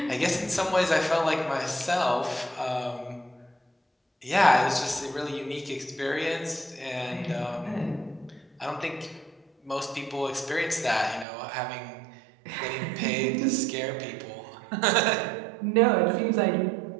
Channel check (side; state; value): left; drops out; at 11.2 s